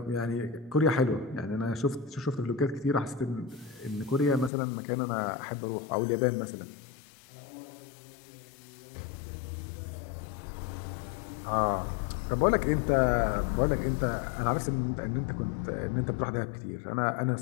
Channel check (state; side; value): drops out; right; at 4.5 s